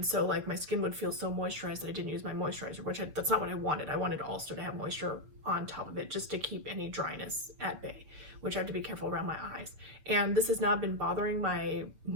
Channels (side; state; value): left; late; 6.8 ms